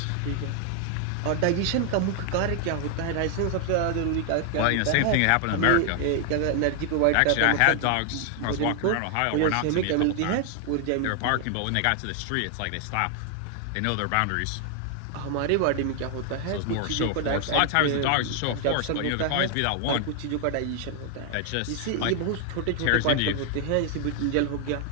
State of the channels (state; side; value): different; both; correlation 0.00